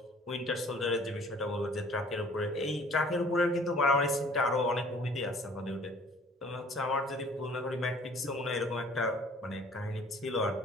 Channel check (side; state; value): both; normal; correlation 0.53